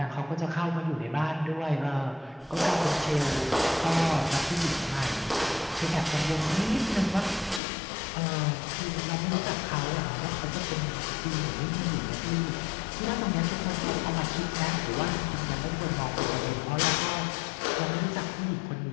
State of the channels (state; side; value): drops out; right; at 7.6 s